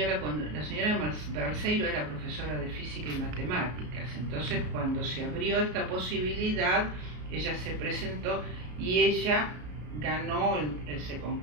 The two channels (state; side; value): late; left; 33 ms